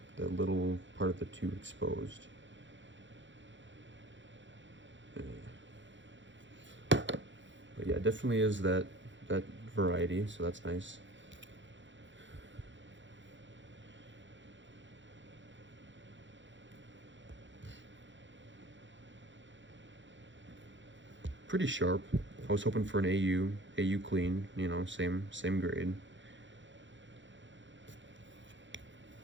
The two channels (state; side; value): late; left; 0.54 ms